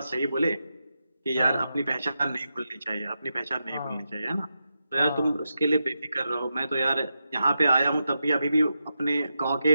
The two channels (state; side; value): inverted; both; correlation -0.88